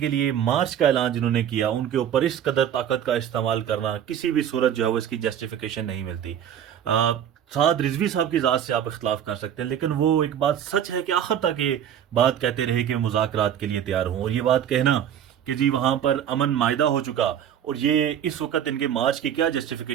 لیے مارچ کا اعلان جنہوں نے کیا، ان کے اوپر اس قدر طاقت کا استعمال کرنا کسی بھی صورت جو ہے وہ اس کی جسٹیفیکیشن نہیں ملتی۔ سعد رضوی صاحب کی ذات سے آپ اختلاف کر سکتے ہیں، لیکن وہ ایک بات سچ ہے کہ آخر تک یہ بات کہتے رہے کہ مذاکرات کے لیے تیار ہوں، اور یہ بات کہنا کہ جی وہاں پر امن معاہدہ ہو چکا اور یہ اس وقت ان کے مارچ کی کیا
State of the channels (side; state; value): left; quieter; 9.6 dB